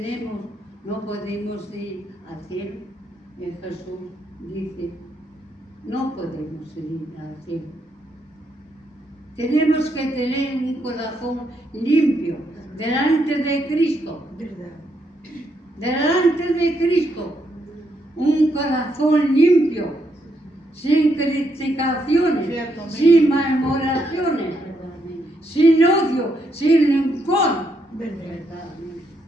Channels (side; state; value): both; normal; correlation 0.77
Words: no podemos ir al cielo. Y Jesús dice: no podemos ir al cielo. Tenemos que tener un corazón limpio delante de Cristo. Verdad. Delante de Cristo. Un corazón limpio, sin criticaciones, Cierto, amén. sin murmuraciones, sin odio, sin rencor. Verdad.